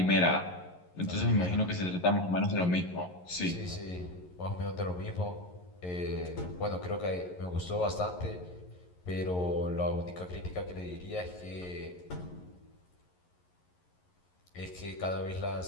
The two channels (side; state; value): right; late; 11 ms